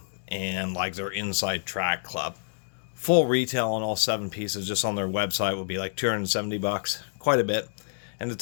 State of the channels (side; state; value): right; silent; digital silence